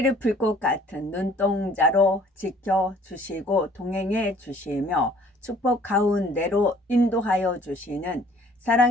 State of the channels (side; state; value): both; normal; correlation 0.56